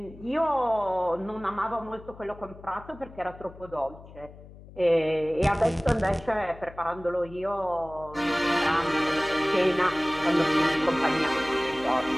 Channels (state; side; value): noise; left; hum, 19 dB below the sound